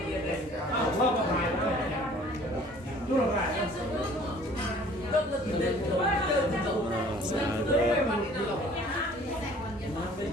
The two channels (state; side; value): normal; both; correlation 0.52